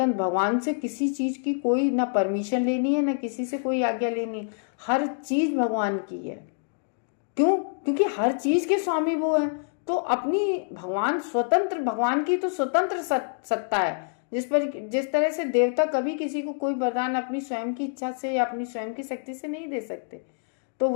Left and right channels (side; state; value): right; silent; digital silence